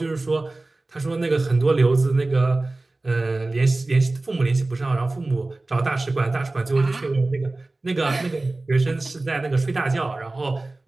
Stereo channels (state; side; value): quieter; left; 3.0 dB